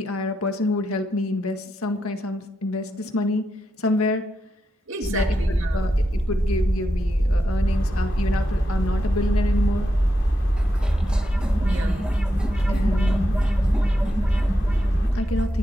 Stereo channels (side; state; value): both; normal; correlation 0.85